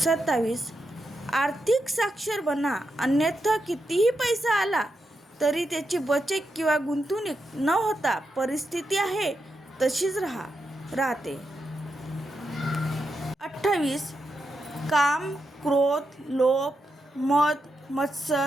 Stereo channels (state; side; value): normal; both; correlation 0.85